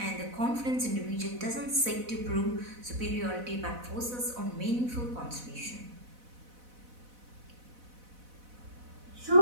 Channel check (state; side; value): late; left; 4.0 ms